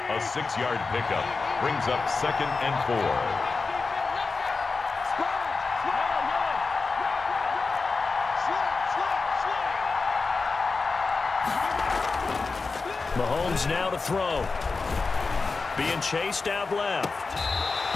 6-yard pickup brings up 2nd and 4. Mahomes now to throw. Being chased out left.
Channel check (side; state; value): right; quieter; 4.2 dB